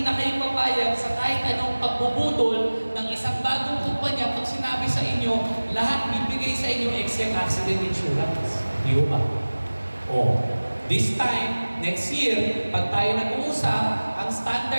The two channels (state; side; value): inverted; both; correlation -1.00